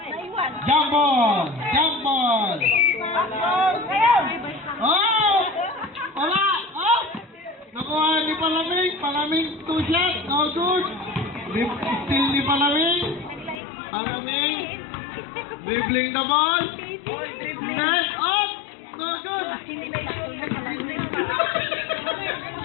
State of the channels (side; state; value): right; drops out; at 13.6 s